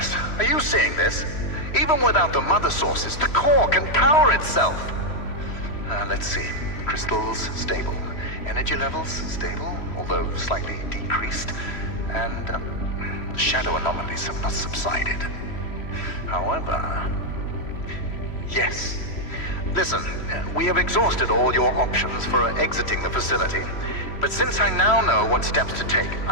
are you seeing this? Even without the mother sources, the core can power itself. Let's see. Crystals, stable. Energy levels, stable, although slightly decreased. And shadow anomalies have not subsided. However... Yes. Listen, we have exhausted all your options for exiting the facility. But since I now know what steps to take,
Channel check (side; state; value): right; late; 3.1 ms